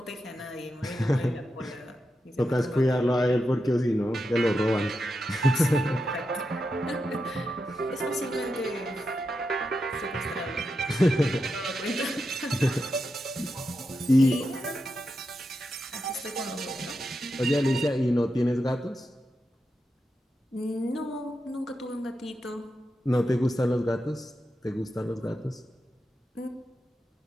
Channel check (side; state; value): both; normal; correlation 0.87